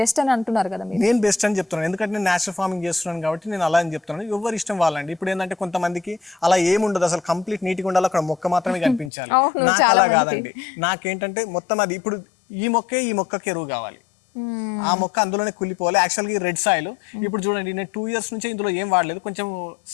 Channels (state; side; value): drops out; right; at 9.1 s